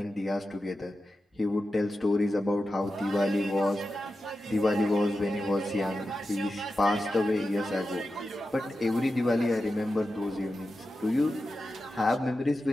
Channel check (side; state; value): both; normal; correlation 0.91